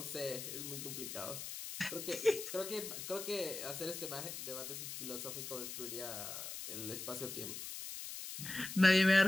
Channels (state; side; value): noise; left; hiss, 7 dB below the sound